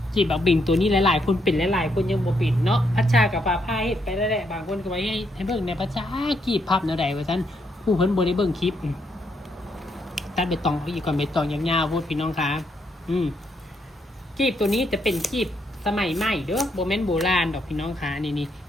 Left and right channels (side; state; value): both; normal; correlation 0.76